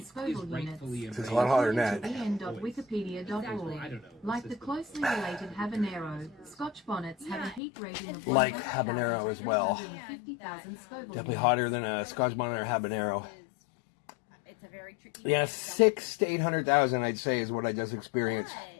Scoville units. It's a lot hotter than that. en.wikipedia.org. Like the closely related habanero, Scotch bonnets have a heat rating of Like habanero as well. 150,000 Scoville Definitely units. hotter than a Scotch bonnet or habanero. It's a very tricky. Yeah, 600,000 to 800,000, I'd say, is what I just experienced.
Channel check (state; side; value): drops out; right; at 7.6 s